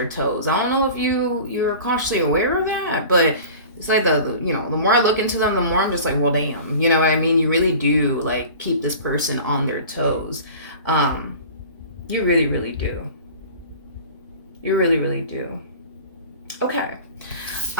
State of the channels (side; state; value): both; inverted; correlation -0.40